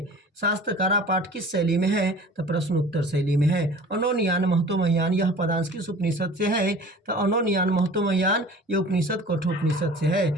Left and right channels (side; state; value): both; normal; correlation 0.43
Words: शास्त्रकारा पाठ किस शैली में है? तो प्रश्न उत्तर शैली में है। अनोनियान महतोमह्यान, यह पदांश किस उपनिषद से है? तो अनोनियान महतोमह्यान ये उपनिषद कठोपनिषद से है।